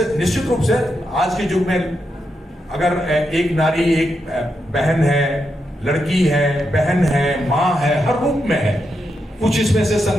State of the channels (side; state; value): both; normal; correlation 0.84